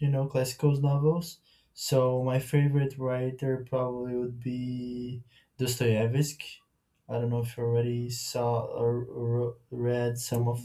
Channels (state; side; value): identical; both; correlation 1.00